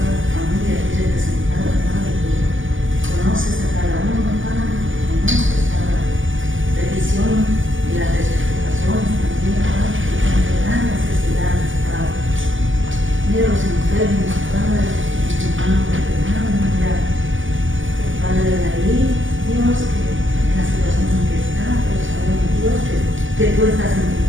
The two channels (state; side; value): late; left; 0.57 ms